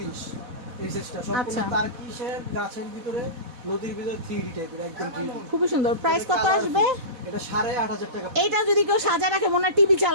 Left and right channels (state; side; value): late; left; 4.1 ms